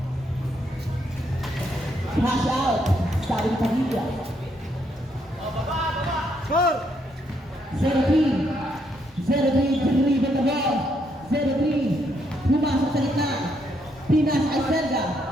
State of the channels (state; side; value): normal; both; correlation 0.74